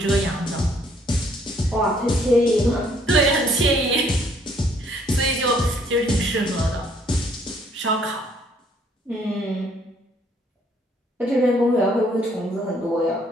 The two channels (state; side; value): normal; both; correlation 0.64